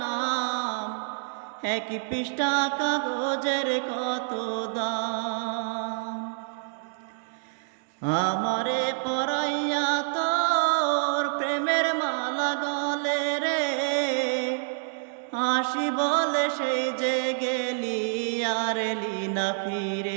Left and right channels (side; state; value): left; silent; digital silence